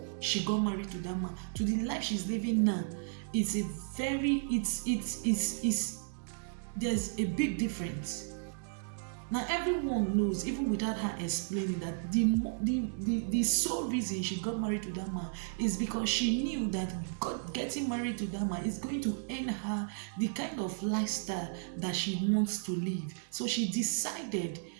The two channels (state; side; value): silent; left; digital silence